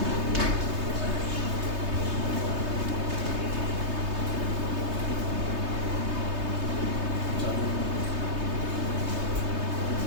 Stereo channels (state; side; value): late; left; 3.2 ms